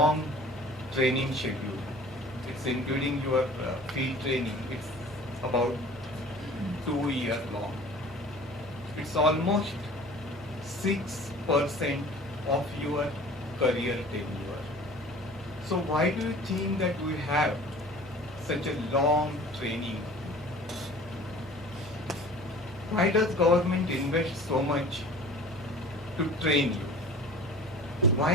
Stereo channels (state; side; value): normal; both; correlation 0.45